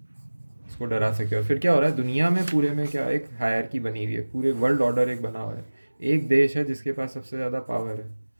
उसको डरा सके। और फिर क्या हो रहा है दुनिया में, पूरे में क्या, एक हायरकी बनी हुई है, पूरे वर्ल्ड ऑर्डर एक बना हुआ है। एक देश है जिसके पास सबसे ज़्यादा पावर है,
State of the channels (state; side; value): inverted; both; correlation -1.00